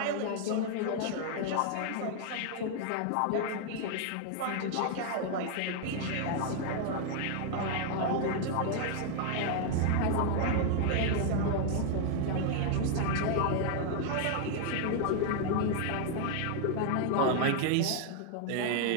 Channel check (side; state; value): both; different; correlation 0.00